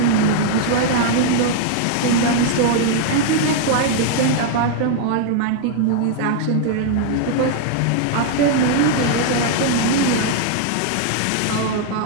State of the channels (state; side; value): different; both; correlation 0.00